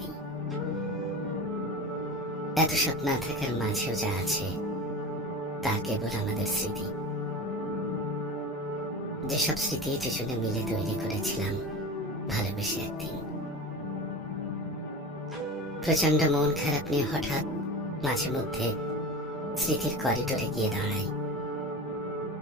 এত সব না থাকার মাঝেও যা আছে তা কেবল আমাদের স্মৃতি, যেসব স্মৃতি দুজনে মিলে তৈরি করেছিলাম ভালোবেসে একদিন। প্রচন্ড মন খারাপ নিয়ে হঠাৎ মাঝে মধ্যে স্মৃতির করিডোরে গিয়ে দাঁড়াই।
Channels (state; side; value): normal; both; correlation 0.30